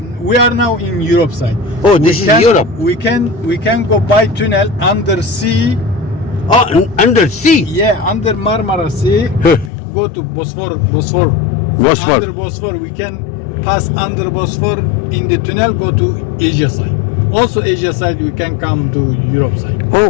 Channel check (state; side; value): drops out; right; at 9.7 s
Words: we are now in Europe side. Oh, this is Europe. We can go by tunnel under sea. Oh, under sea. Yeah, under Marmara Sea. Huh. Go to Bosphor. Bosphor. Under Bosphor, we can pass under Bosphor in the tunnel. Go to Asia side. Also, Asia side, we can come to Europe side. Oh,